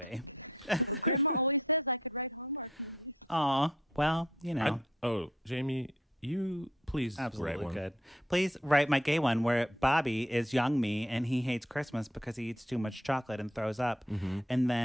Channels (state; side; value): normal; both; correlation 0.65